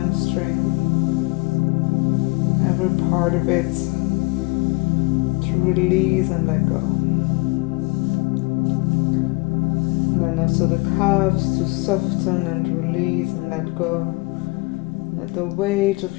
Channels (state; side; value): quieter; right; 26.4 dB